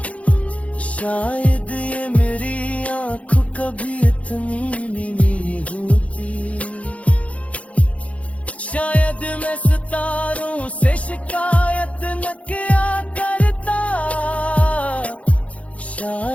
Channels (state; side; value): late; right; 0.065 ms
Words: शायद ये मेरी आँख कभी इतनी नहीं होती। शायद मैं सितारों से शिकायत न किया करता,